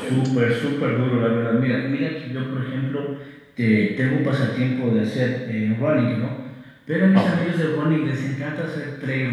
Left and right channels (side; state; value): both; identical; correlation 1.00